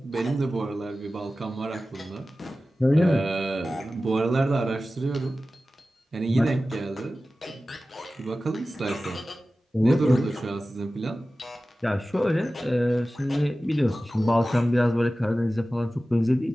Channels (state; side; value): normal; both; correlation 0.95